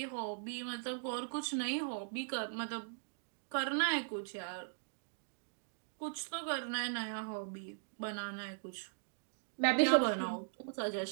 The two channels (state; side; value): silent; left; digital silence